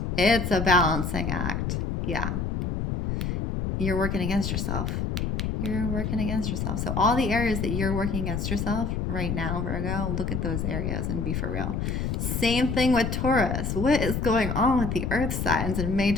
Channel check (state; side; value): noise; left; rumble, 1 dB below the sound